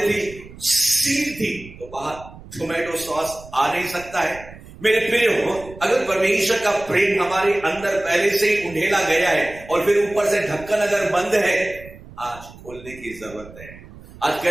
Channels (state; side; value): noise; right; rumble, 18 dB below the sound